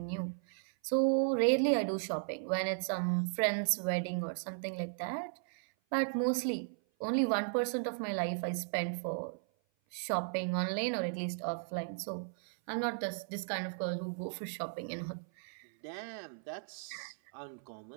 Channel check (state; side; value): silent; left; 54 dB below the other